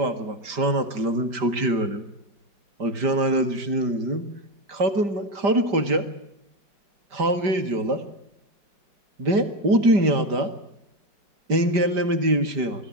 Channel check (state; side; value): late; left; 5.1 ms